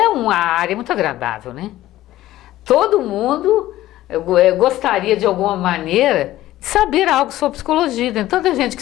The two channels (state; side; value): quieter; right; 15.0 dB